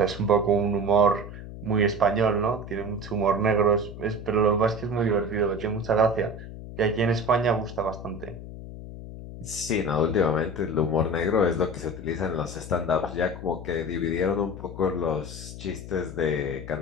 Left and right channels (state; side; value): noise; left; hum, 12 dB below the sound